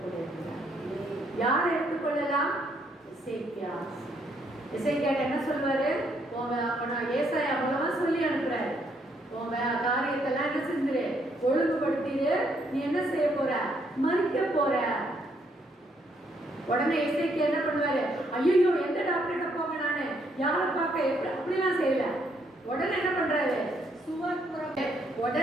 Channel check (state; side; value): normal; both; correlation 0.72